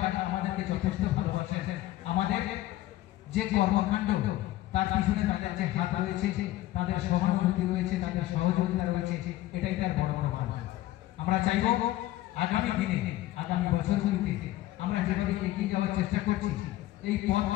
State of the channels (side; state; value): right; quieter; 15.5 dB